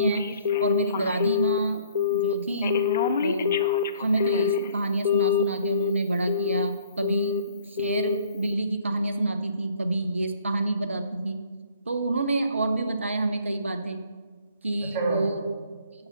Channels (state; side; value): inverted; both; correlation -0.58